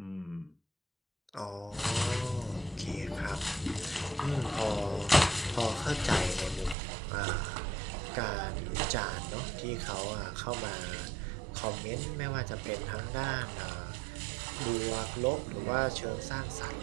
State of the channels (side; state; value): left; drops out; at 6.8 s